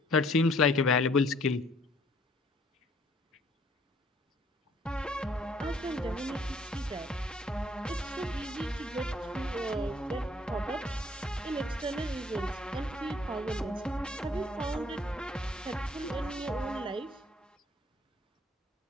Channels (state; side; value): normal; both; correlation 0.61